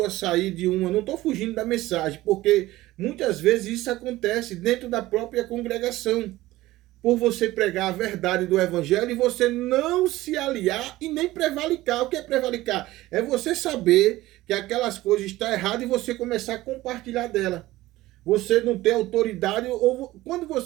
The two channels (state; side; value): quieter; left; 17.2 dB